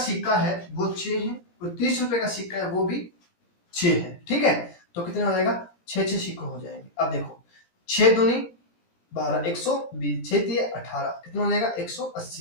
है वो 6 है, और 30 रुपए का सिक्का है वो भी 6 है। ठीक है, तो कितना हो जाएगा, 6 सिक्के हो जाएंगे। अब देखो 6 दूनी 12, 120, 6 दिए 18, कितना हो जाएगा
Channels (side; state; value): right; late; 17 ms